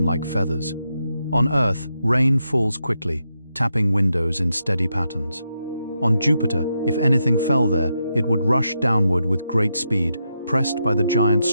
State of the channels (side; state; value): both; inverted; correlation -0.84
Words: like feathers. On Earth, rain falls quickly, tapping windows in steady patterns. On Jupiter, if anything fell there, it would rush downward with great speed, pressed by the giant's